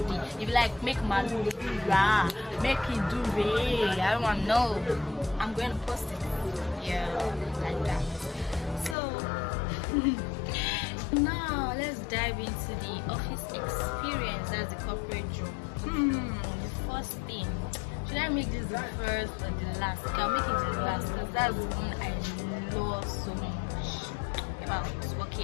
day. If you like, make malu ra, make it do re. I don't want to know. I'm going to post it. Yeah, like that. So now let's dive into the office experience. That's the corporate job. The first thing. Should I make this the first or the last? I'll make it the last, because that's the one I love so much about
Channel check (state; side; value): drops out; right; at 9.0 s